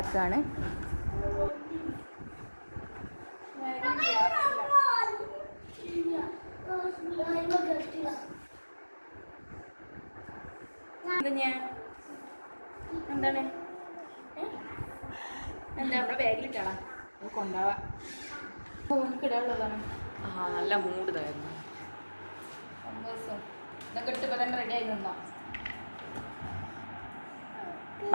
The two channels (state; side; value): inverted; both; correlation -1.00